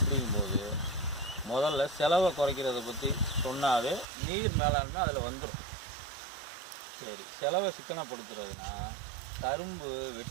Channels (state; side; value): drops out; left; at 4.0 s